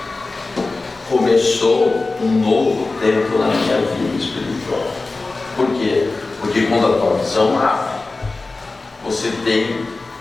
começou um novo tempo na minha vida espiritual. Por quê? Porque quando a tua visão abre, você tem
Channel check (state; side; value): quieter; right; 3.5 dB